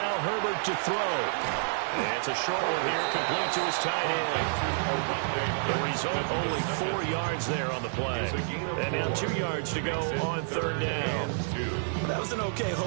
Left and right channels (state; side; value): silent; left; 58 dB below the other